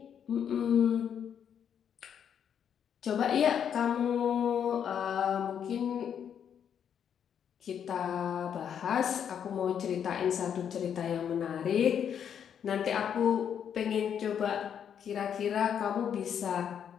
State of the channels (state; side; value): quieter; right; 8.4 dB